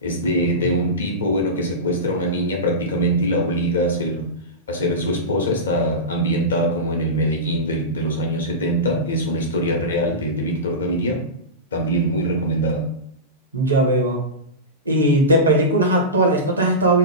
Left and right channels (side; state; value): both; normal; correlation -0.18